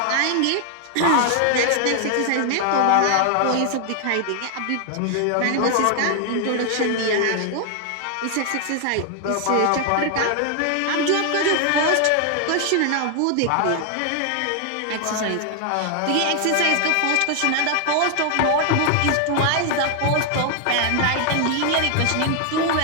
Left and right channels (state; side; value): different; both; correlation 0.00